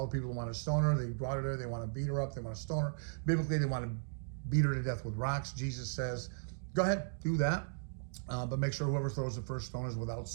the people who want to stone her, they brought her there. They want to beat her up. They want to stone her. Biblically, they want to beat her to death with rocks. Jesus says, go ahead, do that. But make sure whoever throws the first stone is without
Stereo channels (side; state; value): left; silent; digital silence